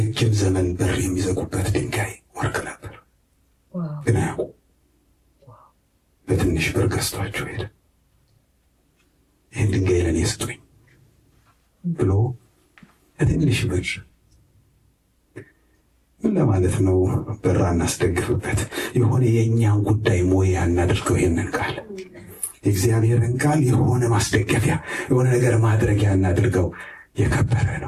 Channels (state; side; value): identical; both; correlation 1.00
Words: ዘመን በር የሚዘጉበት ድንጋይ ወርቅ ነበር፣ ግን አያውቁ። በትንሽ ብር ገዝቷቸው ሄደ። ይህን ድንጋይ ለእኔ ስጡኝ ብሎ በትንሽ ብር ምን ለማለት ነው? በራ እናስደግፍበት። የሆነ የእኛን ጉዳይ ሞያ እናድርገው። ይሄንን ቃል የእግዚአብሔርን ቃል የሆነ ማስደገፊያ፣ የሆነ ነገር ማድረጊያ እናድርገው። የከበረ